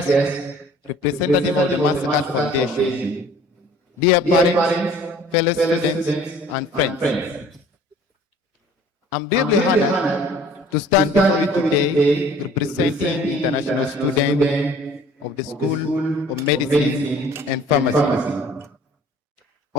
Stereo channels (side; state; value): both; normal; correlation 0.51